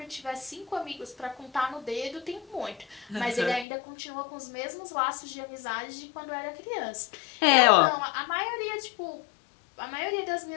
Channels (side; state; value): right; drops out; at 3.7 s